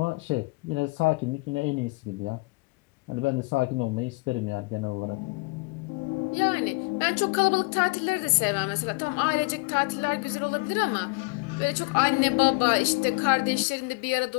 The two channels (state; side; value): quieter; right; 27.9 dB